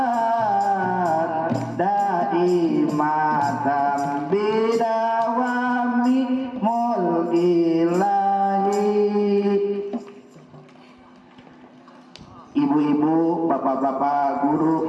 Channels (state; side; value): identical; both; correlation 1.00